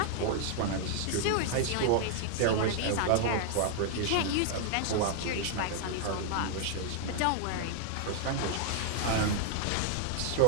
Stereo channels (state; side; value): different; both; correlation 0.00